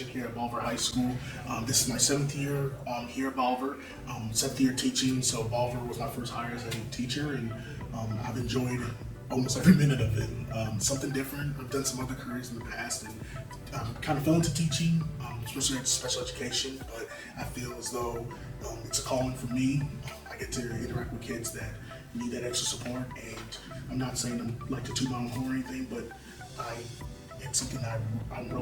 here at Bolivar High School. This is my 7th year here at Bolivar, 7th year teaching. So Bolivar was my first hire as a teacher, and I've enjoyed almost every minute of it. Something different. I've done some other careers in the past, and kind of fell into teaching, especially at special education. But I feel as though it's a calling for me. I get to interact with kids that need that extra support, and I'm not saying I'm like to toot my own horn or anything, but it's something that I'm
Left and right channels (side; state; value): both; identical; correlation 1.00